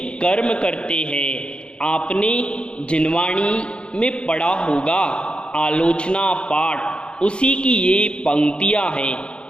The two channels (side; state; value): right; late; 0.055 ms